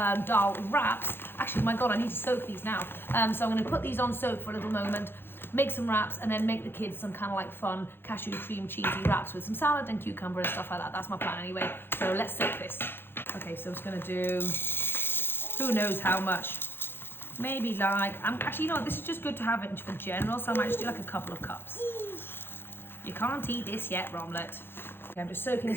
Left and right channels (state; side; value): late; right; 0.10 ms